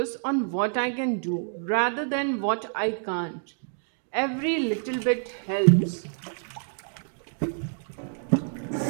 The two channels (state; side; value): silent; left; digital silence